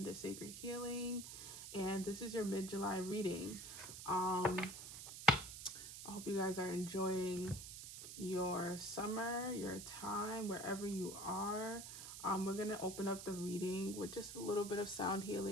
Sacred Healing, and this is your mid-July reading. I hope you guys are enjoying your summer, your time, wherever you are. We're going to open up the reading with just a little bit of sound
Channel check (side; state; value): right; noise; hiss, 9 dB below the sound